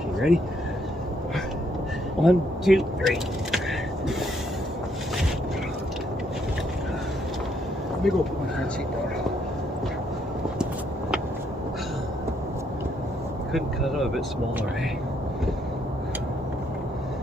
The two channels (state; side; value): normal; both; correlation 0.72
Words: ready? 1, 2, 3. Let me go put my front seat down. Couldn't cut it a bit smaller, eh?